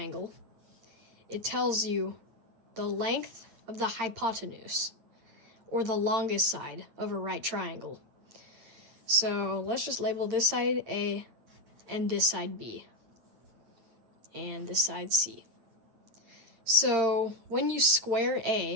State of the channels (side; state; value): left; late; 8.8 ms